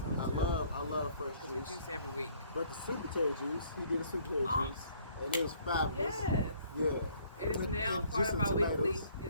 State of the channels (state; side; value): inverted; both; correlation -0.61